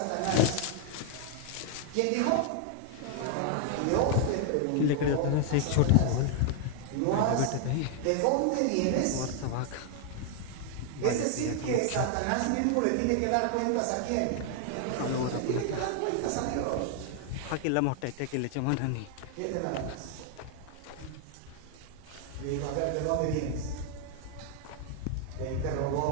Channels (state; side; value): different; both; correlation 0.00